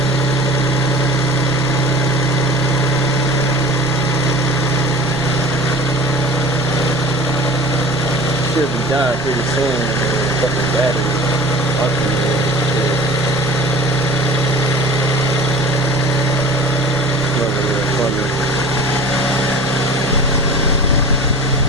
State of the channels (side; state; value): both; normal; correlation 0.41